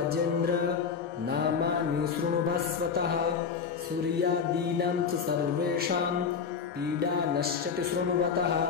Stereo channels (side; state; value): right; quieter; 6.2 dB